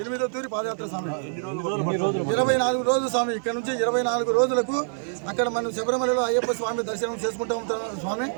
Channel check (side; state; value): left; silent; digital silence